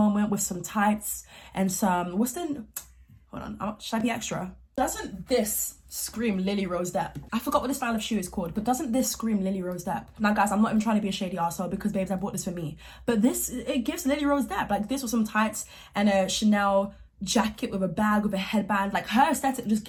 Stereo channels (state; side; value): identical; both; correlation 1.00